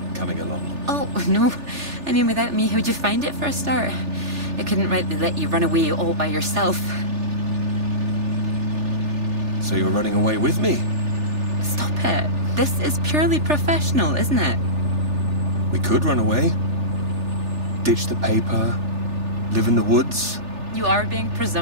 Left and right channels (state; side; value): late; left; 3.4 ms